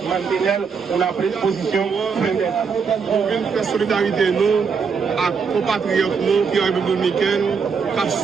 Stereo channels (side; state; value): left; quieter; 5.7 dB